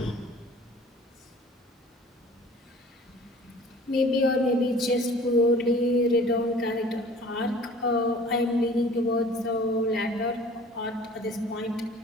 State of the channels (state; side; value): normal; both; correlation 0.48